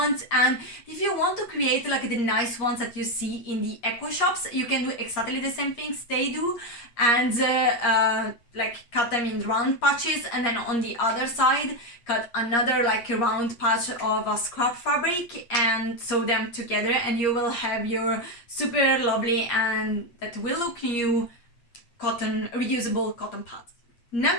And if you want to create like the nice ones that you see in the eco shops, you can do exactly the same things they do, and like cut them in round patches, and then on the other side cut another like a round patch of a scrap fabric and sew them together, and you will have your super lovely and that will look new reusable cotton pads.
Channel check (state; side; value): late; right; 8.5 ms